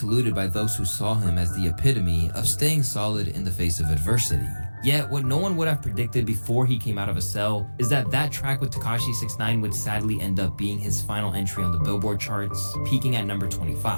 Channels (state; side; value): inverted; both; correlation -1.00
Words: by those who saw him as the epitome of staying solid in the face of adversity. Yet, what no one would have predicted before he came out of a cell is that track with Tekashi 6ix9ine would sadly end up being his final entry on the Billboard charts, peaking at number